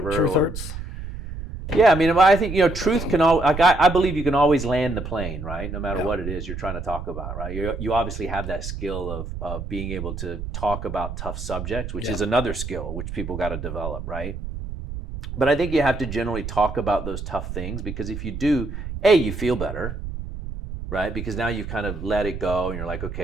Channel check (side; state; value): right; noise; rumble, 8 dB below the sound